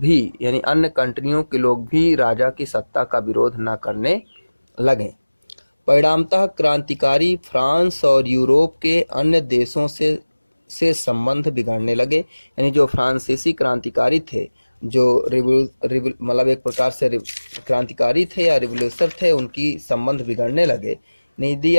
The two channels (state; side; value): inverted; both; correlation -1.00